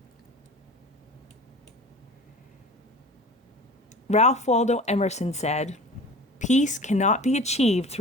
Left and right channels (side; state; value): both; normal; correlation 0.38